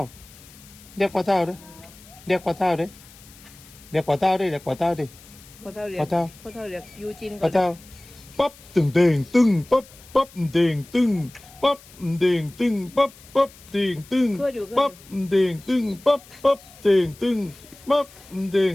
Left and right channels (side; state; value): left; noise; hiss, 22 dB below the sound